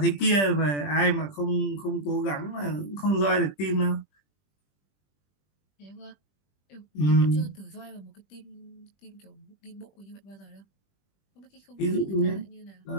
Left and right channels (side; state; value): right; late; 20 ms